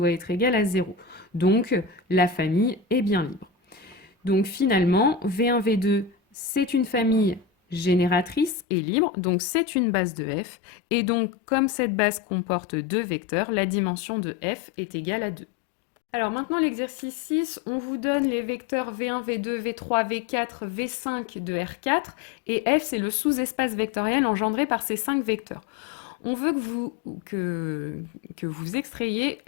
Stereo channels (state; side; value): drops out; right; at 8.6 s